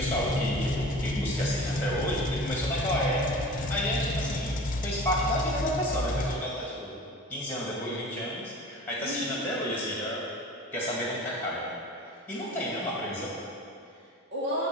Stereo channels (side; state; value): both; normal; correlation 0.40